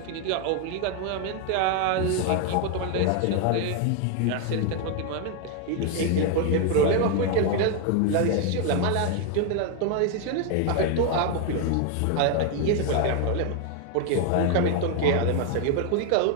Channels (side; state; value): both; different; correlation 0.01